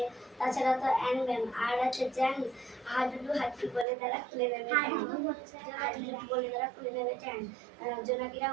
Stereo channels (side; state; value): left; drops out; at 3.9 s